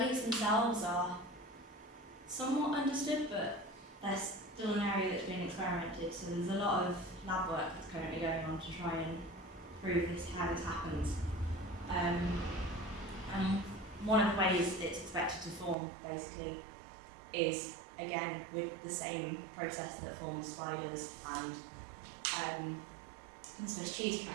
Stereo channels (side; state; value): left; drops out; at 15.8 s